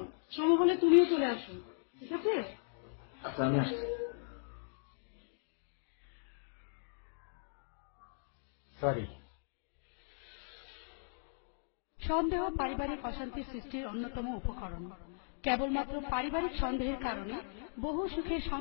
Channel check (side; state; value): right; silent; digital silence